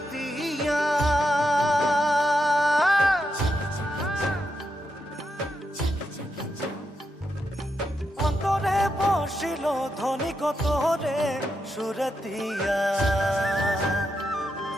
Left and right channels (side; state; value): both; normal; correlation 0.84